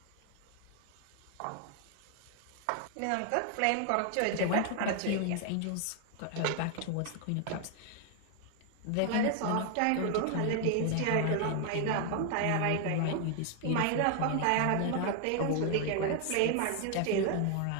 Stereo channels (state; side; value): different; both; correlation 0.00